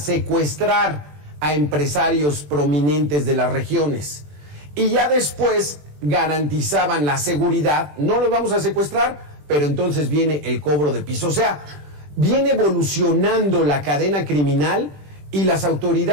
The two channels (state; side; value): late; left; 20 ms